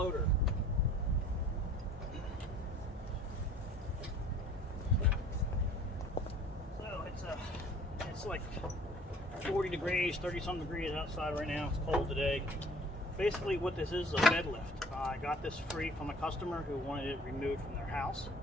So it's like 40 degrees, 30 some degrees outside right now. It's cold today. Basically what this is a bed lift. I got this free from a customer who wanted it removed from their house,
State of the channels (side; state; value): both; normal; correlation 0.51